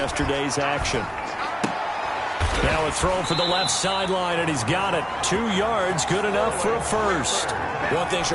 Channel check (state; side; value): identical; both; correlation 1.00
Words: action. Now a throw for the left sideline, and he's got it. 2 yards, good enough for a first. One thing